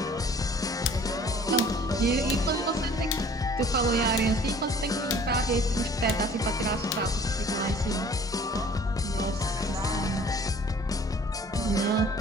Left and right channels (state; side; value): normal; both; correlation 0.51